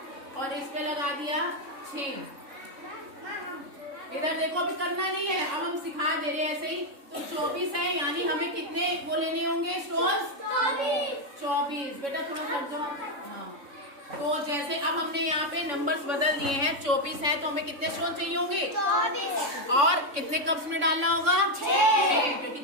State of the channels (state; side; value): late; left; 3.6 ms